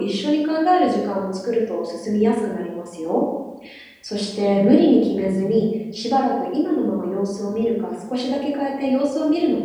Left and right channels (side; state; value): both; identical; correlation 1.00